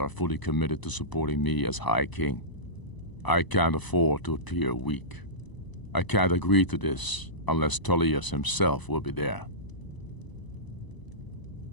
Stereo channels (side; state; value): right; late; 1.0 ms